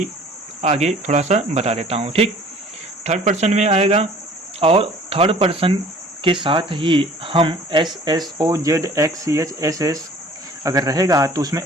आगे थोड़ा सा बता देता हूँ। ठीक, थर्ड पर्सन में आएगा और थर्ड पर्सन के साथ ही हम S S O Z X C H S S अगर रहेगा तो उसमें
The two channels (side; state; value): both; normal; correlation 0.50